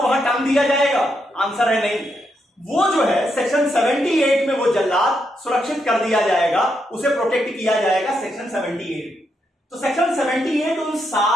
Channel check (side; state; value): both; normal; correlation 0.80